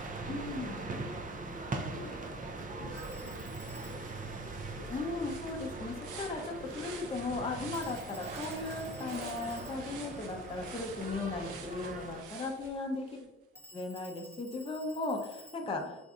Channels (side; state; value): both; normal; correlation 0.41